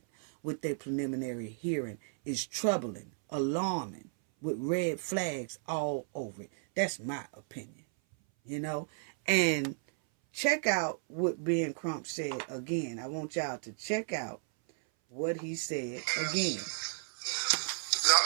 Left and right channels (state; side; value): silent; left; 55 dB below the other